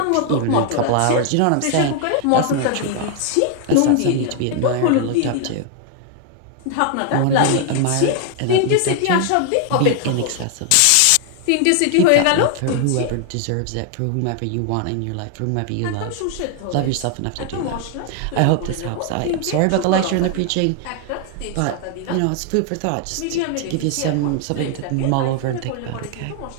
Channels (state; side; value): different; both; correlation 0.00